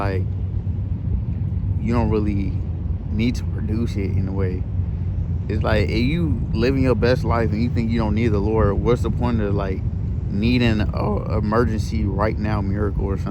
you don't really need to produce it in a way. It's like if you living your best life and you think you don't need the Lord, what's the point of like needing a emergency right now miracle or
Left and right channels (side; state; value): both; identical; correlation 1.00